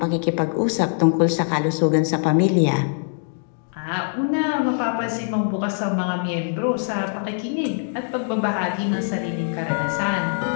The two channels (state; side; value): silent; right; digital silence